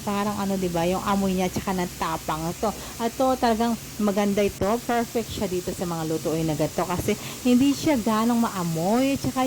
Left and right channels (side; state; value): both; identical; correlation 1.00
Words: parang diba, yung amoy niya tsaka natapang ito talagang maganda ito, perfect siya dito sa mga lutuin na gato kasi hindi siya ganong maamoy tsaka